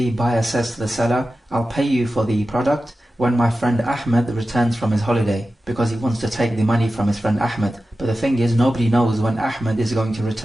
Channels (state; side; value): normal; both; correlation 0.93